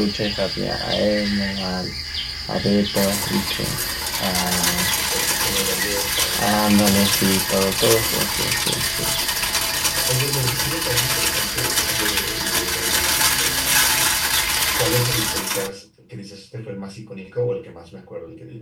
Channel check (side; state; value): both; identical; correlation 1.00